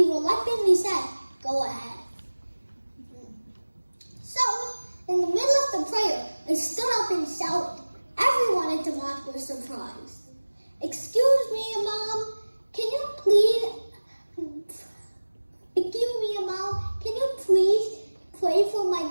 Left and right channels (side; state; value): both; inverted; correlation -1.00